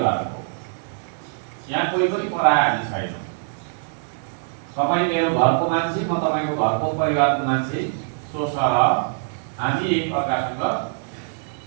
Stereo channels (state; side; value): silent; left; digital silence